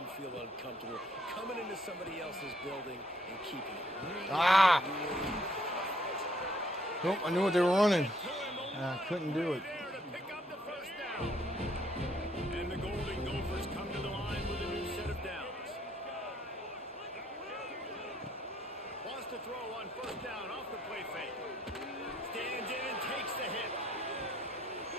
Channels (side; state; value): both; normal; correlation 0.68